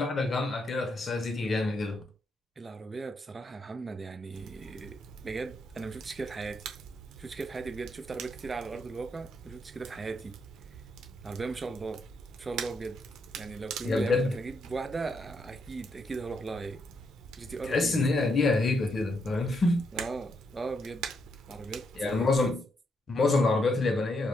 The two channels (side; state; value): both; normal; correlation 0.78